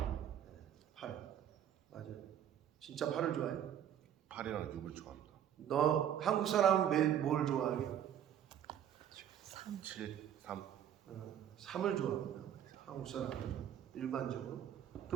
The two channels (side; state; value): left; quieter; 10.0 dB